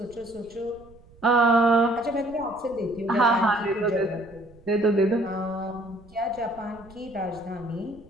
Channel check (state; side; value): noise; right; rumble, 24 dB below the sound